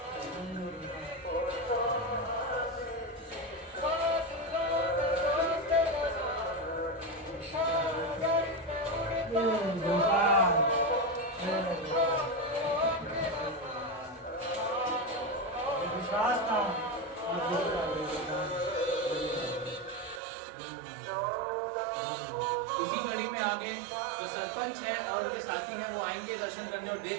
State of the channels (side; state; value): left; drops out; at 20.2 s